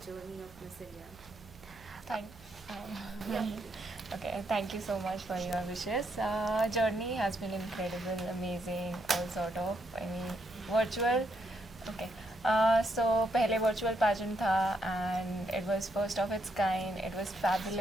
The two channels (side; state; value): right; noise; hum, 22 dB below the sound